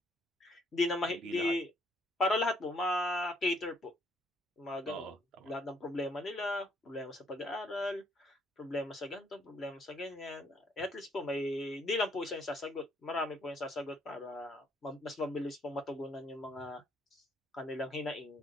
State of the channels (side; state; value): both; normal; correlation 0.68